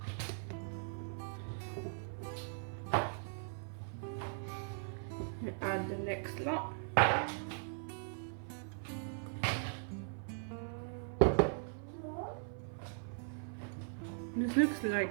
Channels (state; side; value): silent; left; 51 dB below the other